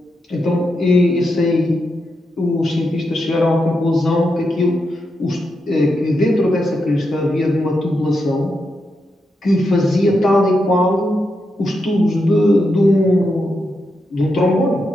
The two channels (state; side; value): normal; both; correlation 0.85